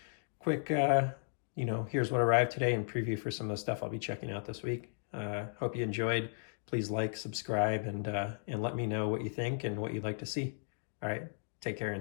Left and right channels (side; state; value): right; silent; digital silence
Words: quick, you know, here's what arrived today and preview for some of the stuff I'll be checking out this week. Hope you enjoyed. Please like, subscribe, and let me know what you think and what you'd like to see. All right, take care